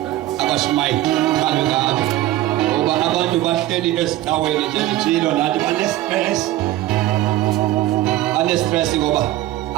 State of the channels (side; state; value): left; quieter; 15.3 dB